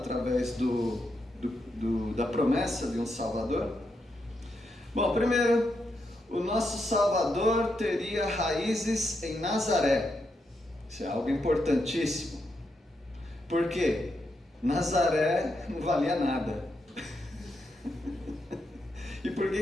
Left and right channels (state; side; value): normal; both; correlation 0.82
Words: da promessa de um Salvador. Bom, primeiro, o nosso Salvador teria raízes em Nazaré. Isso é algo importantíssimo. Por quê? Nazaré não valia nada. E por